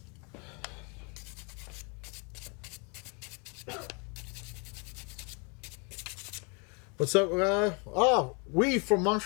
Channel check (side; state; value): right; quieter; 34.0 dB